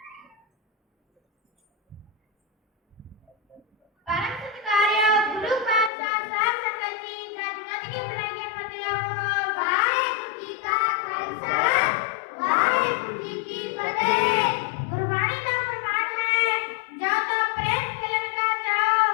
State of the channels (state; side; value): drops out; right; at 5.9 s